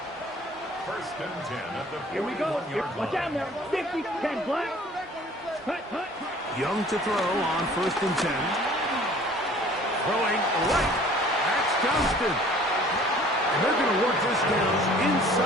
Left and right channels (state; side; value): normal; both; correlation 0.51